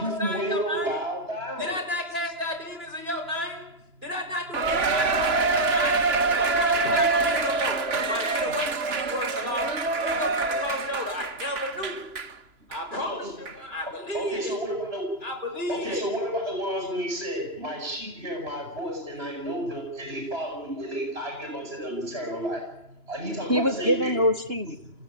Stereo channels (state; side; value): late; left; 2.9 ms